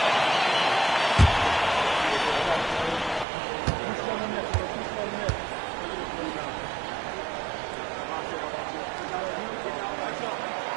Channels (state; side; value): drops out; left; at 3.2 s